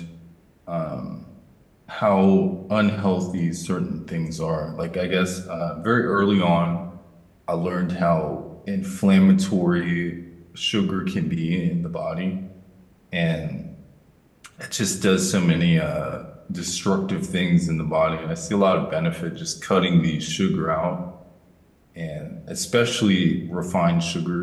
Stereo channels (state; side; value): identical; both; correlation 1.00